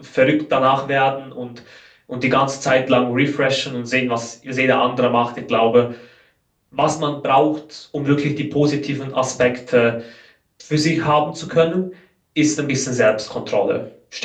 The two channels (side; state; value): both; identical; correlation 1.00